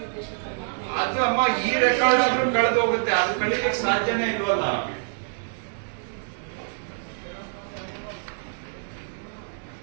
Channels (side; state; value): left; silent; digital silence